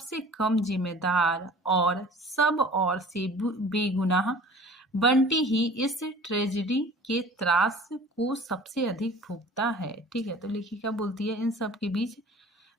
कम जिम्मेदार और सब और से बेगुनाह बंटी ही इस ट्रेजेडी के त्रास को सबसे अधिक भुगता है। ठीक है, तो लेखिका बोलती है इन सब के बीच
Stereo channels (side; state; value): both; normal; correlation 0.46